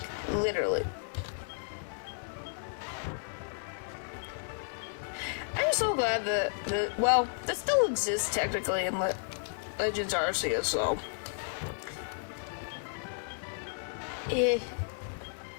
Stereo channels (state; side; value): silent; right; 56 dB below the other